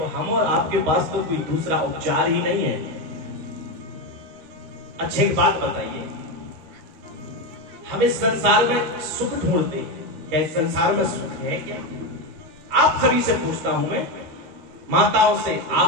हम और आपके पास तो कोई दूसरा उपचार ही नहीं है। अच्छी बात बताइए, हम इस संसार में सुख ढूंढते हैं, क्या इस संसार में सुख है क्या? आप सभी से पूछता हूं मैं, माताओं से,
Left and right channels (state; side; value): late; left; 13 ms